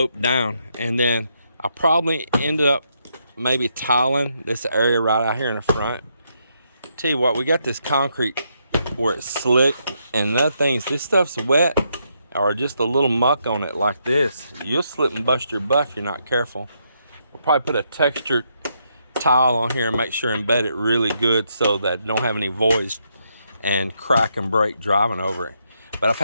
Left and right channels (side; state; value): both; inverted; correlation -0.78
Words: down. And then I probably end up maybe tiling this area right out here in the front. Tell you what, we got this concrete where it's slick, and other things, this stuff's wet or just a little muck on it like this, you'll slip and bust your butt if you're not careful. We'll probably put a textured tile on here and make sure embed it really good so that it don't have any voids and crack and break driving over it. But I've